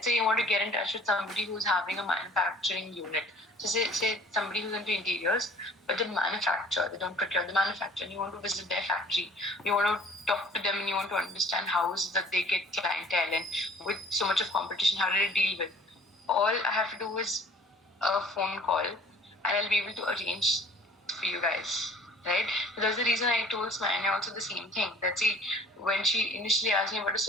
say you want to get in touch with somebody who's having a manufacturing unit. So, say somebody who's into interiors, but they manufacture, they don't procure, the manufacture, and you want to visit their factory. You want to talk to them and you want to understand how is it that they get clientele, and with so much of competition, how do they deal with? All I have to do is a phone call, and I'll be able to arrange for you guys, right? So that's the reason I told Smanya also the same thing. That see, when she initially asked me about a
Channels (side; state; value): both; normal; correlation 0.51